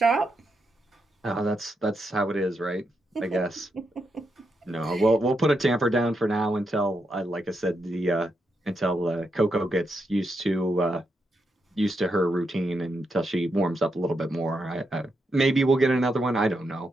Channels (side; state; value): both; normal; correlation 0.83